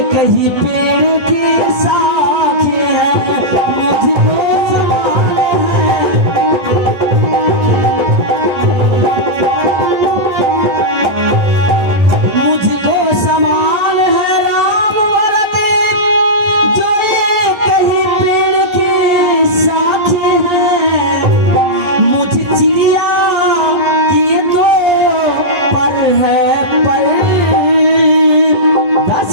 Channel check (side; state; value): left; late; 12 ms